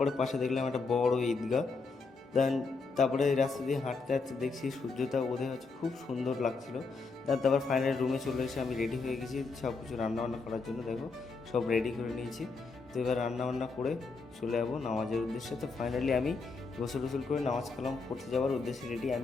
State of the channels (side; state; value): right; quieter; 4.3 dB